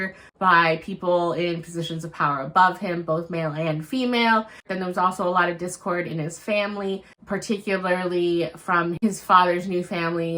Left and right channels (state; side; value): identical; both; correlation 1.00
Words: by people in positions of power above him, both male and female. Then there was also a lot of discord in his family, particularly from his father's new